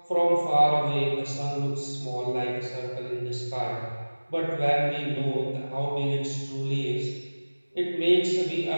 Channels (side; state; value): both; inverted; correlation -1.00